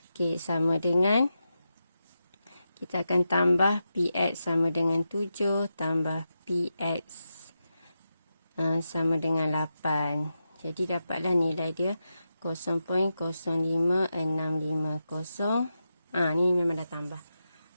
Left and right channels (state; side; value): inverted; both; correlation -0.88